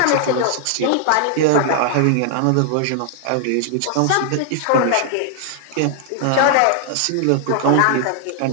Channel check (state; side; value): different; both; correlation 0.00